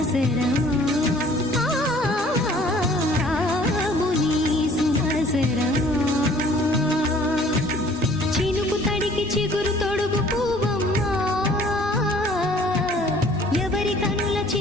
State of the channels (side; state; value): both; normal; correlation 0.54